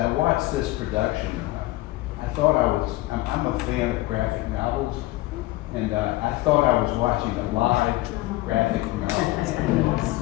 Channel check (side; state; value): right; quieter; 18.6 dB